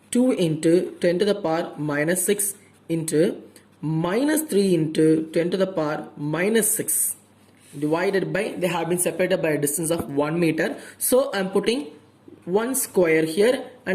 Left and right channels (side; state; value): both; identical; correlation 1.00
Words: 2 into 10 to the power minus 6 into minus 3 into 10 to the power minus 6 divided by, they have been separated by a distance of 1 meter. So I am putting 1 square here and